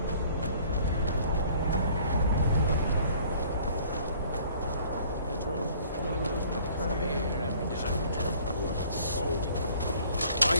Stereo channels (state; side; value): inverted; both; correlation -0.55